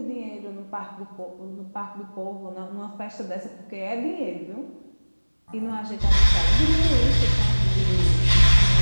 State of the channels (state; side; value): inverted; both; correlation -1.00